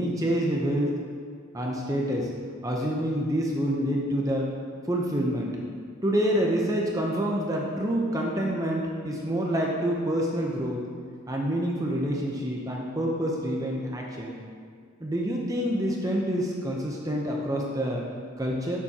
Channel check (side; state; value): both; normal; correlation 0.65